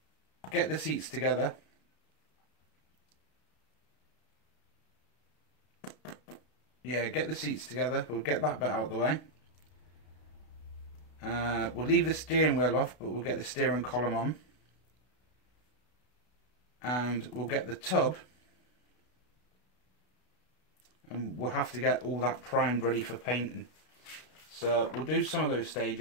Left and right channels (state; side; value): late; right; 32 ms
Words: get the seats together. Yeah, get the seats together. We'll get that bit out of the way. We'll leave the steering wheel off, but we'll get the steering column on. And we'll get the tub. And we'll have to get all that primed ready for painting. So we'll do some of those